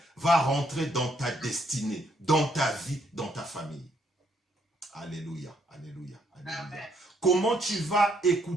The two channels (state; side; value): normal; both; correlation 0.72